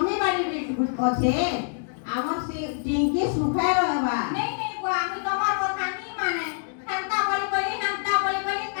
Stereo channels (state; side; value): silent; right; digital silence